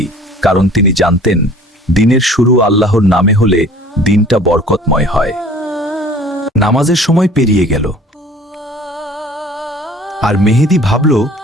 কারণ তিনি জানতেন দিনের শুরু আল্লাহর নামে হলে দিনটা বরকতময় হয়। নামাজের সময় পেরিয়ে গেল, আর মেহেদী ভাবল,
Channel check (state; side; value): normal; both; correlation 0.49